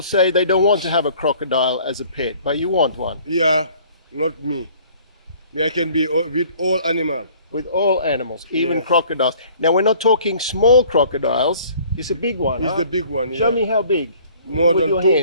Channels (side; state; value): both; inverted; correlation -0.54